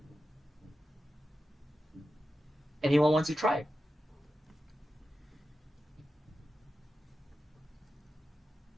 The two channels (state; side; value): normal; both; correlation 0.92